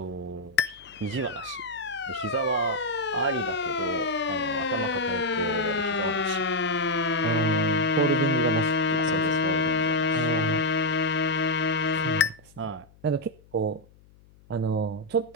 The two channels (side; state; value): left; noise; hum, 27 dB below the sound